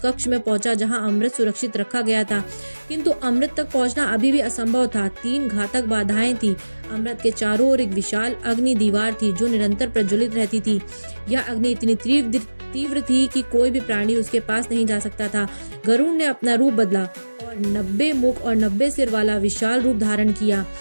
में पहुंचा जहां अमृत सुरक्षित रखा गया था, किंतु अमृत तक पहुंचना अभी भी असंभव था। 3 घातक बाधाएं थी। अमृत के चारों ओर एक विशाल अग्नि दीवार थी जो निरंतर प्रज्वलित रहती थी। यह अग्नि इतनी तीव्र थी कि कोई भी प्राणी उसके पास नहीं जा सकता था। गरुड़ ने अपना रूप बदला और 90 मुख और 90 सिर वाला विशाल रूप धारण किया।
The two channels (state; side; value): inverted; both; correlation -1.00